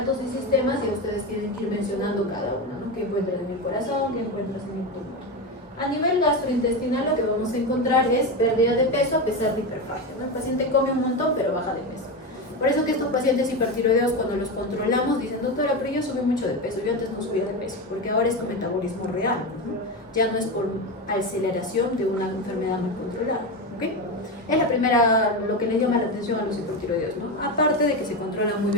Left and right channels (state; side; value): normal; both; correlation 0.17